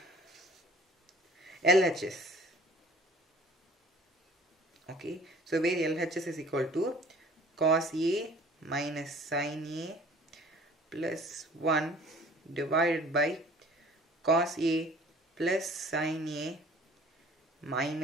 LHS. Okay, so where LHS is equal to cos A minus sin A plus 1 divided by cos A plus sin A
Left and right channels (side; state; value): both; normal; correlation 0.50